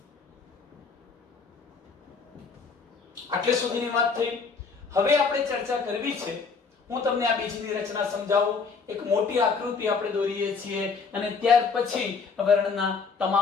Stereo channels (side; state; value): right; quieter; 5.1 dB